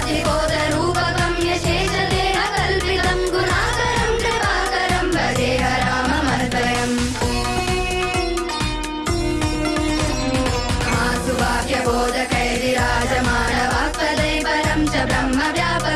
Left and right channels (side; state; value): both; identical; correlation 1.00